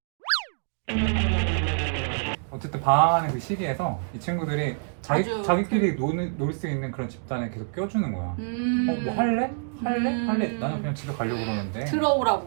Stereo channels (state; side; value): silent; left; digital silence